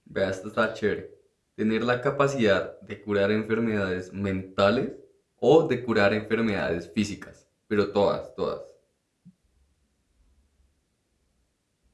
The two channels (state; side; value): identical; both; correlation 1.00